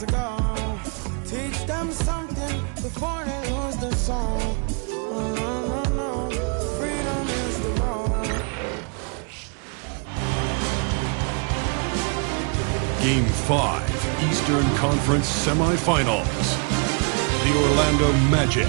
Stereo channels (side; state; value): left; quieter; 37.7 dB